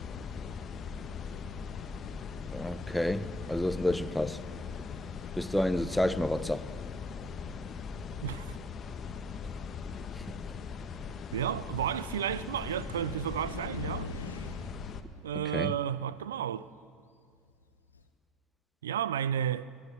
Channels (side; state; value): both; normal; correlation 0.34